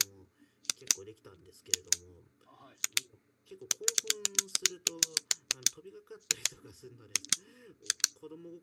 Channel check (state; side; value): identical; both; correlation 1.00